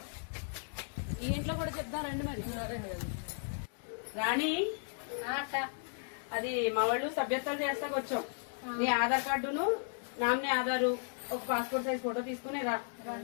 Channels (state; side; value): silent; right; digital silence